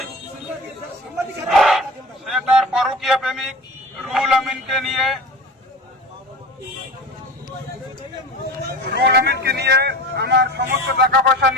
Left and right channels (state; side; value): normal; both; correlation 0.35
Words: সে তার পরকীয়া প্রেমিক রুহুল আমিনকে নিয়ে আমার সমস্ত টাকা পয়সা